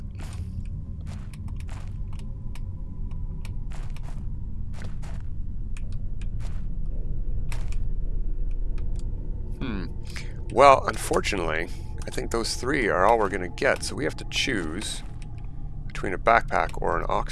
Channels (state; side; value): identical; both; correlation 1.00